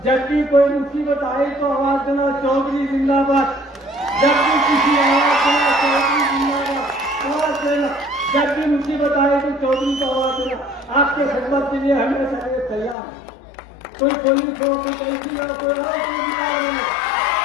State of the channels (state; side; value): drops out; right; at 13.0 s